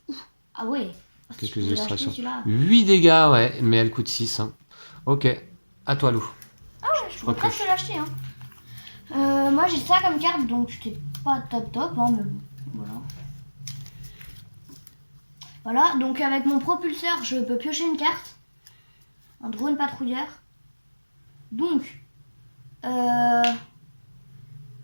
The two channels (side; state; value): both; inverted; correlation -1.00